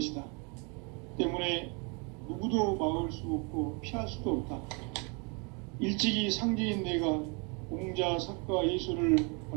때문에 누구도 막을 수 없고 피할 수도 없다. 일찍이 상제인 내가 공자, 석가, 예수를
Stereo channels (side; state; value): left; quieter; 33.1 dB